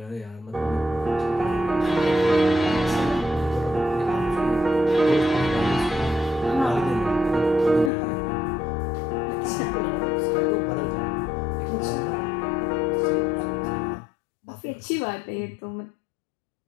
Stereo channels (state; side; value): drops out; right; at 7.9 s